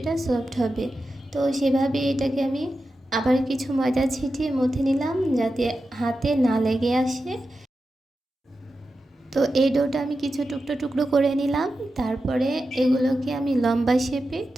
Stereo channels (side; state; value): both; normal; correlation 0.91